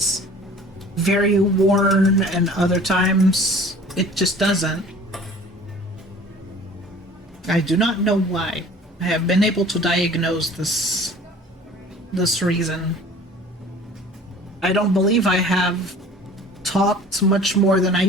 very worn and other times it just doesn't. I do not know why. I have been able to diagnose this reason. I don't believe I have talked much more than I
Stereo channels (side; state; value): both; normal; correlation 0.46